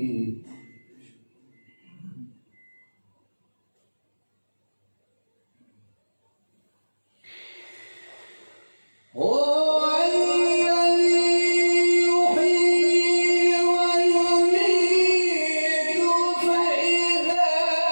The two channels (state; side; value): inverted; both; correlation -1.00